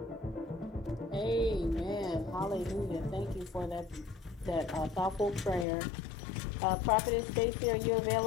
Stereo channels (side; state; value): right; drops out; at 5.7 s